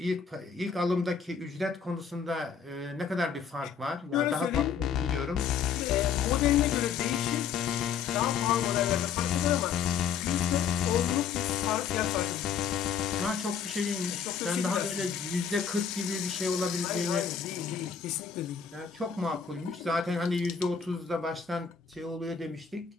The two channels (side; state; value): right; quieter; 7.0 dB